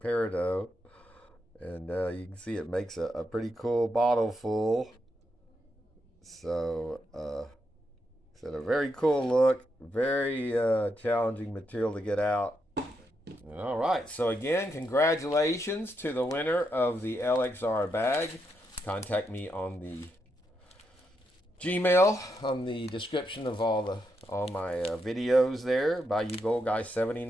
and you can see it makes a pretty cool bottle full. So it's a very cool look, very challenging material to get out. All right, so again, congratulations to the winner of the LXR bag. Contact me on the Gmail on the description of all my videos there by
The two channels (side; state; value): both; normal; correlation 0.82